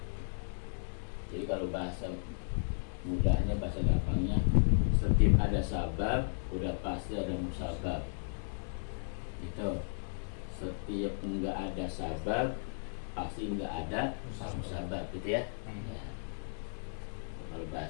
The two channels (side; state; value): right; silent; digital silence